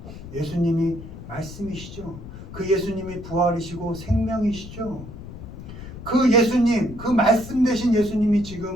예수님이 말씀이시죠. 그 예수님이 부활이시고 생명이시죠. 그 예수님, 그 말씀 되신 예수님이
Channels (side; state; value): left; noise; rumble, 13 dB below the sound